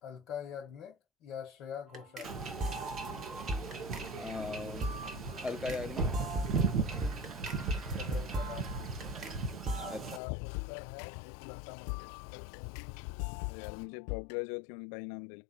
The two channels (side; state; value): right; drops out; at 10.2 s